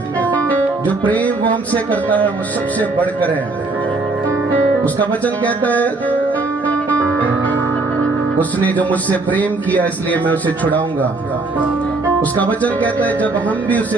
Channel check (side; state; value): left; quieter; 3.4 dB